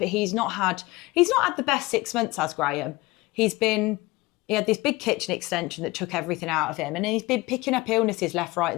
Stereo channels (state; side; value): quieter; right; 20.9 dB